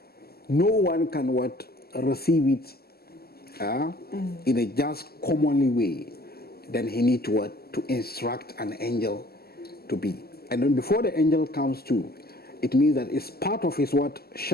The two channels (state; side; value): late; right; 0.45 ms